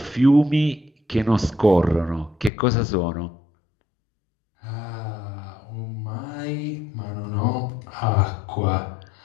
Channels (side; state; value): right; drops out; at 2.5 s